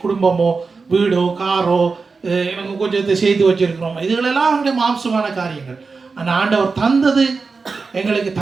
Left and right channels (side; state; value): left; quieter; 4.5 dB